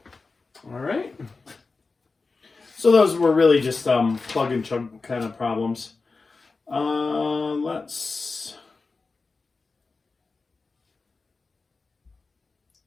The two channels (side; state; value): right; quieter; 4.0 dB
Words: All right. So those were really just plug and chug kind of problems.